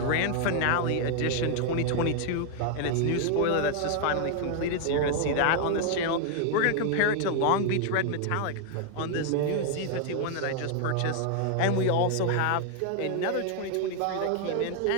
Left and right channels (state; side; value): different; both; correlation 0.00